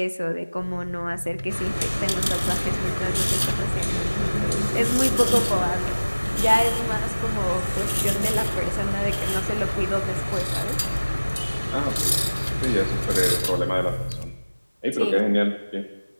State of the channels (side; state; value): both; inverted; correlation -1.00